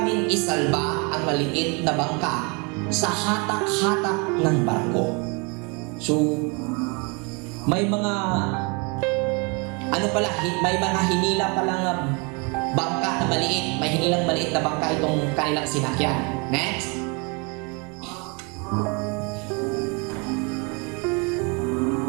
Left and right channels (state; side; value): quieter; left; 31.7 dB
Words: isalba ang maliit na bangka sa hatak-hatak ng barko. So, may mga hinila palang bangka na maliit. May hinilang maliit na bangka itong kanilang sinakyan. Next.